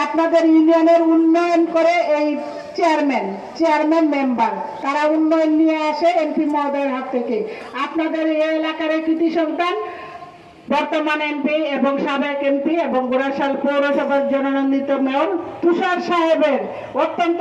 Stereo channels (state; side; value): identical; both; correlation 1.00